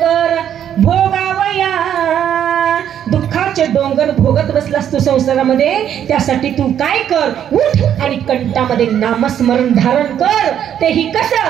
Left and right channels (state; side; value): quieter; left; 9.7 dB